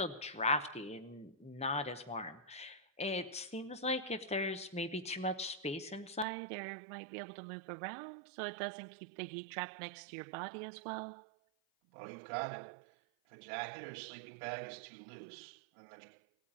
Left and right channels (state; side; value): drops out; left; at 6.2 s